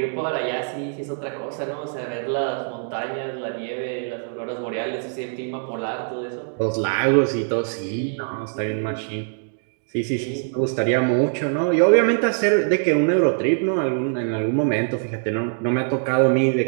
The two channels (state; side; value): silent; left; digital silence